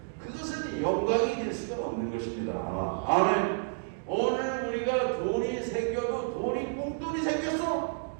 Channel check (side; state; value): left; silent; digital silence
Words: 그것은 영광이 될 수가 없는 것입니다. 아멘. 오늘 우리가 돈이 생겨도 돈이 꽁돈이 생겼어.